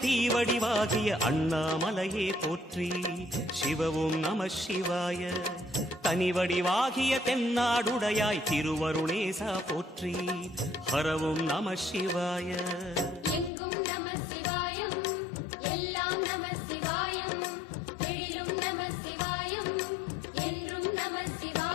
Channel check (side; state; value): right; drops out; at 13.5 s